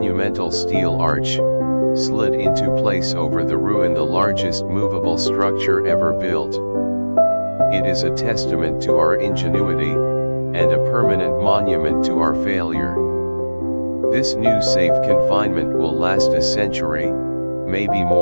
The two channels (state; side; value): inverted; both; correlation -1.00